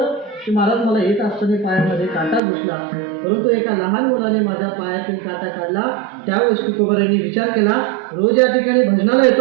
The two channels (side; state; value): left; drops out; at 2.4 s